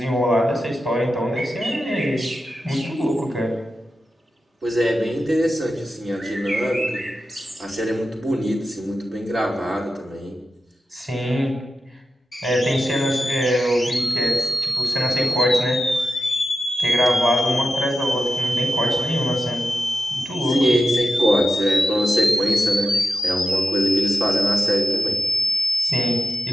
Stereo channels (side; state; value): both; normal; correlation 0.91